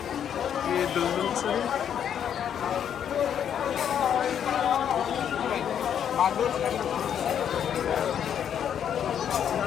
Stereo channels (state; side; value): quieter; right; 8.9 dB